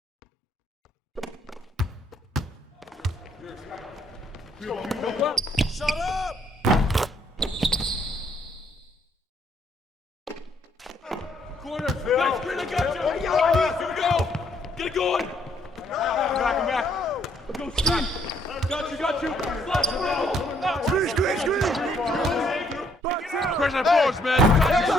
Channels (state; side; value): normal; both; correlation 0.68